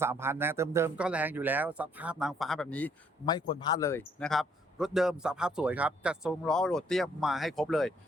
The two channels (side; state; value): both; normal; correlation 0.66